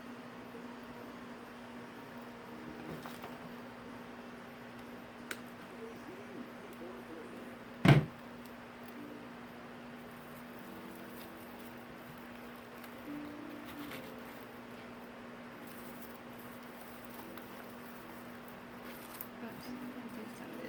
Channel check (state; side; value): identical; both; correlation 1.00